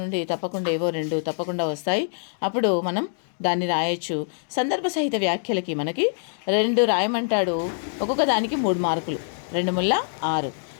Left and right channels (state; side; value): silent; right; digital silence